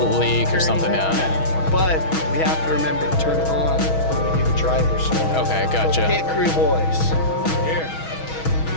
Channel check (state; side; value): late; right; 6.2 ms